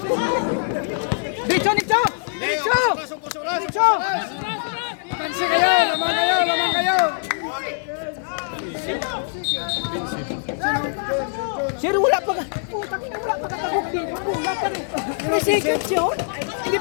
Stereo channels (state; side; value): silent; right; 64 dB below the other